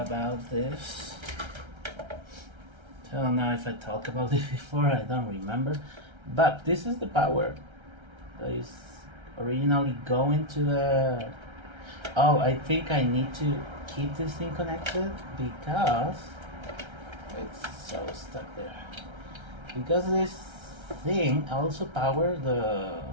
this. I don't know if I talked about it before, I don't remember. But this is the power that is originally going to the... Oh, I think I need to keep this thing connected because it's so stuck there. Because this thing also powers the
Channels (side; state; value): left; late; 1.3 ms